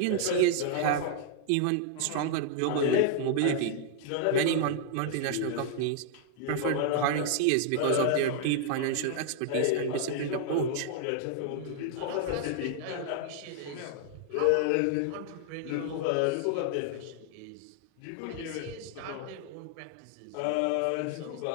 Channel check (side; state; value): both; different; correlation -0.01